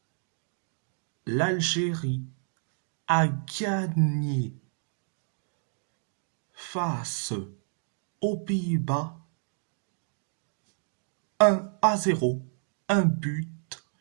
L'Algérie a gagné face aux Pays-Bas 1-0, un but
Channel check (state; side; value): silent; left; 58 dB below the other